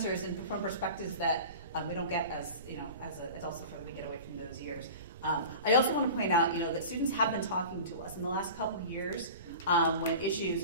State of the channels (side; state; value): both; inverted; correlation -0.36